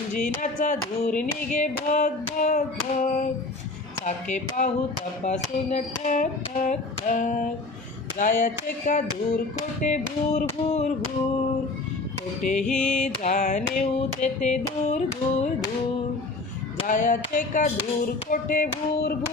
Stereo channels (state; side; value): quieter; right; 3.2 dB